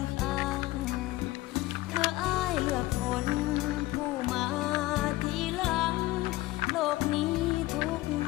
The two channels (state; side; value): quieter; right; 18.6 dB